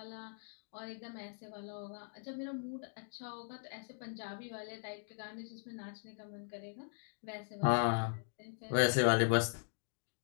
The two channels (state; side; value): silent; right; digital silence